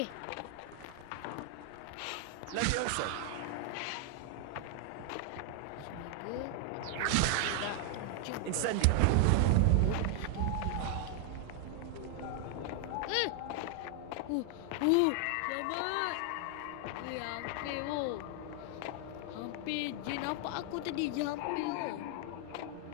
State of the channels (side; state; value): both; different; correlation 0.00